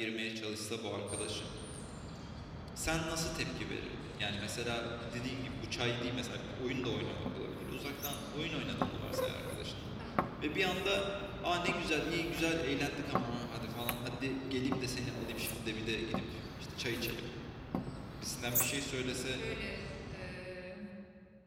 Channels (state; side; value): identical; both; correlation 1.00